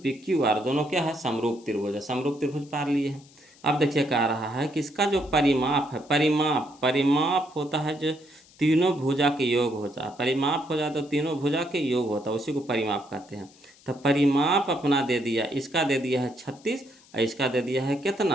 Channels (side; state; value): left; noise; hiss, 27 dB below the sound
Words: PQR दोनों क्या है, समरूप त्रिभुज है। समरूप त्रिभुज पार लिए हैं। अब देखिए कह रहा है कि इसका जो परिमाप है, परिमाप होता है जो तीनों भुजा के योग होता है। परिमाप हो जाए तो तीनों भुजा के योग होता है, उसी को परिमाप कहते हैं। तो परिमाप अपना दे दिया, इसका दे दिया है 36 और इसका दे दिया है